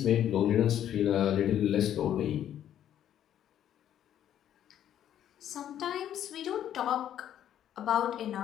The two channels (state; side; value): quieter; right; 10.7 dB